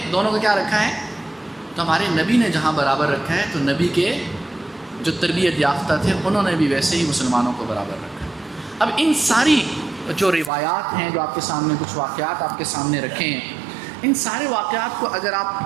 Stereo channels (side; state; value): left; drops out; at 10.5 s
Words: دونوں کو کیا رکھا ہے، تو ہمارے نبی نے جہاں برابر رکھا ہے تو نبی کے جو تربیت یافتہ تھے انہوں نے بھی ویسے ہی مسلمانوں کو برابر رکھا. اب ان ساری جو روایات ہیں جو آپ کے سامنے، کچھ واقعات آپ کے سامنے رکھے ہیں، ان سارے واقعات کو اگر